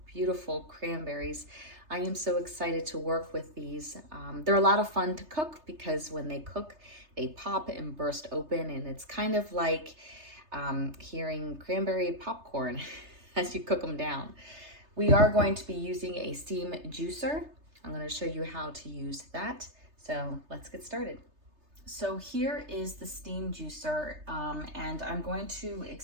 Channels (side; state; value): left; late; 3.3 ms